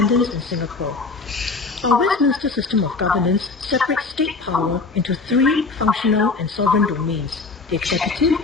in Singapore. Our Westminster system of governance separates state power into three functional and sovereign domains: the executive,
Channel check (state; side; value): quieter; right; 4.1 dB